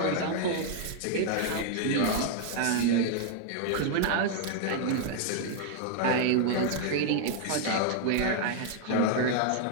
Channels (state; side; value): different; both; correlation 0.00